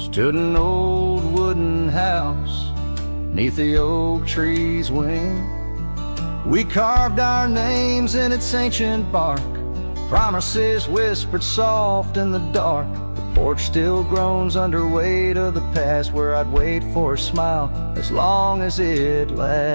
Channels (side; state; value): both; inverted; correlation -1.00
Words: an old wooden house 'neath the oak tree's wing. We carved our names in its ancient bark, promises whispered soft in the dark. The porch still groans under weight of the past, where I'd wait for a smile as long as it